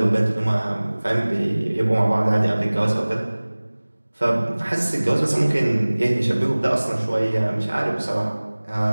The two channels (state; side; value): inverted; both; correlation -1.00